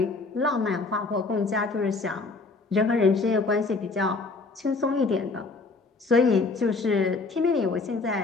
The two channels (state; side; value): quieter; right; 3.8 dB